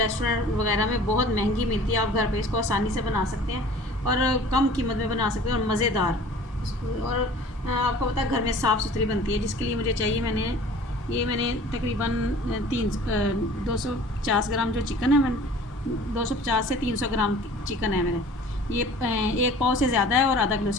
वगैरह में बहुत महंगी मिलती है। आप घर पर इसको आसानी से बना सकते हैं और कम कीमत में बना सकते हैं और मज़ेदार। और आपको पता है घर में साफ़ सुथरी बनती है, जिसके लिए मुझे चाहिए मैंने तकरीबन 250 ग्राम जो चिकन है, मैंने 250 से 300 ग्राम चिकन है मेरे। ये एक पाव से ज़्यादा है और आधा किलो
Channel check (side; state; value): both; normal; correlation 0.46